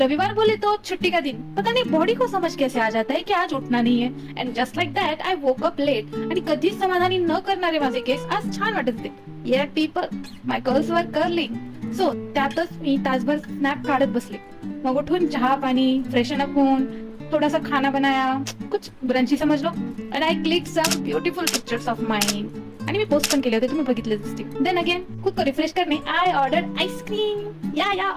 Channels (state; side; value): identical; both; correlation 1.00